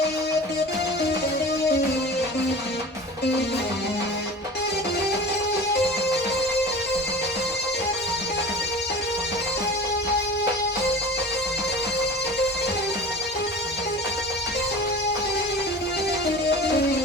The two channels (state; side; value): normal; both; correlation 0.38